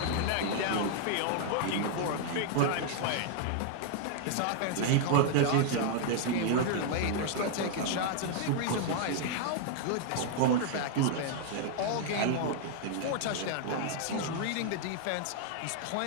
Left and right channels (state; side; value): different; both; correlation 0.00